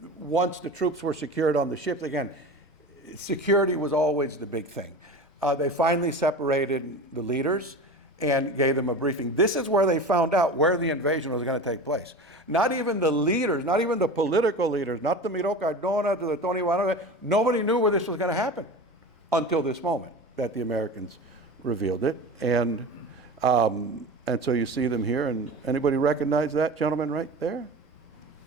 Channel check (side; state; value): both; normal; correlation 0.32